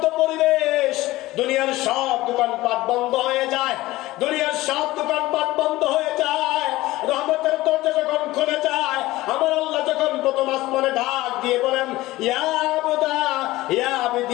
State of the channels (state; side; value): quieter; right; 18.0 dB